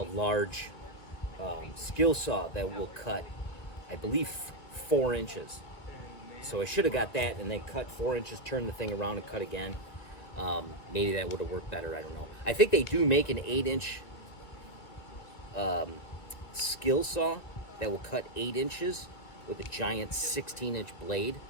skill saw that will cut, I believe, 4 inches. So I should have got that and then cut 4 inches, turn the thing around and cut again. Maybe that would have worked better, I don't know. I think they do make an 8-inch skill saw that will cut 8 inches with a giant 16-inch blade,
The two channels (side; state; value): right; late; 2.1 ms